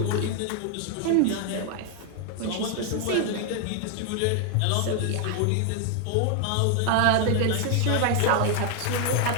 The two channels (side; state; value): both; different; correlation 0.00